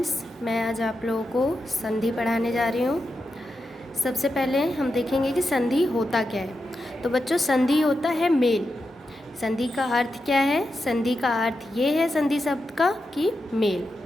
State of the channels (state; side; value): normal; both; correlation 0.88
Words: मैं आज आप लोगों को संधि पढ़ाने जा रही हूँ। सबसे पहले हम देखेंगे कि संधि होता क्या है। तो बच्चों, संधि होता है मेल। संधि का अर्थ क्या है? संधि का अर्थ ये है संधि शब्द का कि मेल।